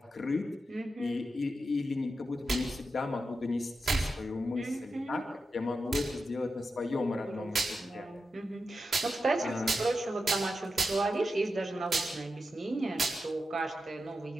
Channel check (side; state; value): both; normal; correlation 0.90